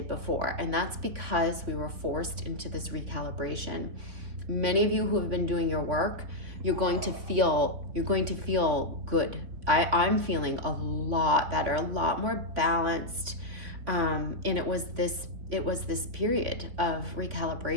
before. And that's because we were forced into this recalibration. Many of you who have been doing your work, you're going to feel good. I'm feeling a lot better, a lot more balanced. And it was this period of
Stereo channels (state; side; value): late; left; 3.5 ms